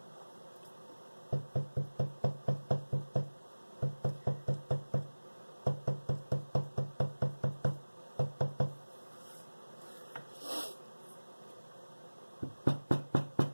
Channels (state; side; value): inverted; both; correlation -1.00